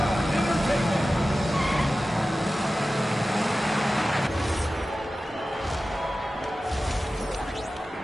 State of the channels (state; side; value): normal; both; correlation 0.95